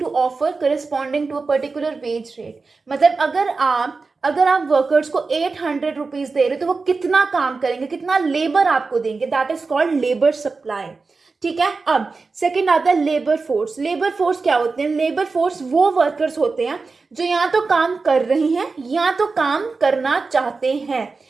offer corresponding to a particular wage rate. मतलब अगर आप वर्कर्स को 800 रुपीज दे रहे हो तो वो कितना काम करेंगे, कितना लेबर आपको देंगे, that is called labour supply. ठीक है, अब सेकंड आता है लेबर फोर्स. लेबर फोर्स क्या होते हैं? लेबर फोर्स वो वर्कर्स होते हैं जो या तो काम कर रहे हैं या तो काम करना चाहते हैं.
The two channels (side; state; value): left; quieter; 4.2 dB